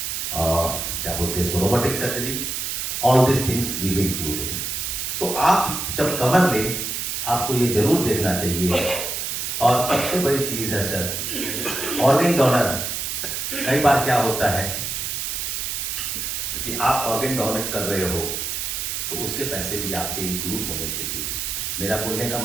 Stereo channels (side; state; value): right; noise; hiss, 3 dB below the sound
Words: क्या बोलते हैं इसको, robotic surgery, all this things will be included. तो आप जब कवर लें, आपको ये जरूर देखना चाहिए। और सबसे बड़ी चीज है सर, ऑर्गन डोनर। कई बार क्या होता है कि आप ऑर्गन डोनेट कर रहे हो तो उसके पैसे भी आपके इंक्लूड होने चाहिए। मेरा बोलने का